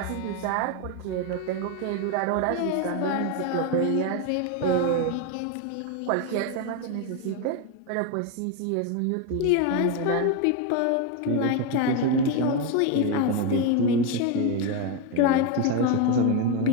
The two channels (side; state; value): both; different; correlation 0.02